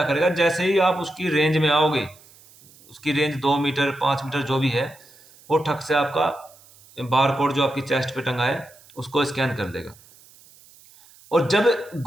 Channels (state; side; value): noise; right; hiss, 26 dB below the sound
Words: करेगा, जैसे ही आप उसकी रेंज में आओगे, उसकी रेंज 2 मीटर 5 मीटर जो भी है, वो ठक से आपका बार कोड जो आपकी चेस्ट पे टंगा है उसको स्कैन कर देगा। और जब